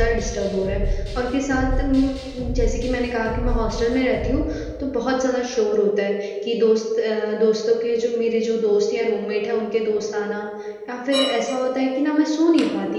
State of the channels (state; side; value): identical; both; correlation 1.00